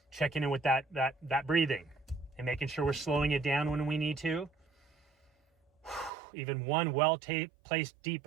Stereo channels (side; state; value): left; drops out; at 6.1 s